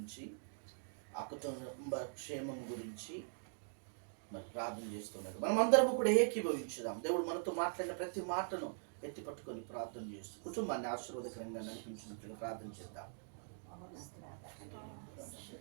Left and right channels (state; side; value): silent; left; digital silence